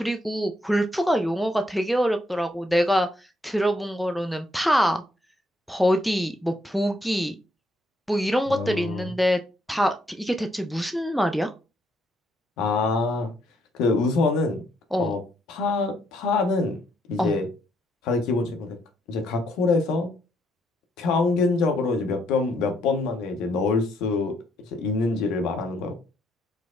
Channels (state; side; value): normal; both; correlation 0.73